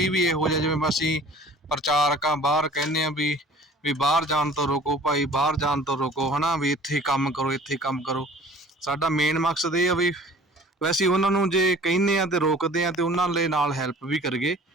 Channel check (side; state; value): both; normal; correlation 0.48